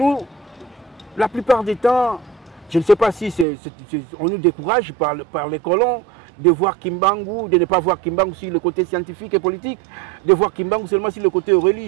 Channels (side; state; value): left; drops out; at 3.5 s